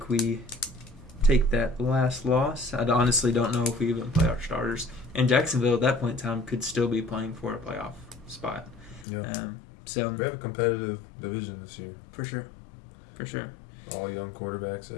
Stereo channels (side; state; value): right; drops out; at 9.1 s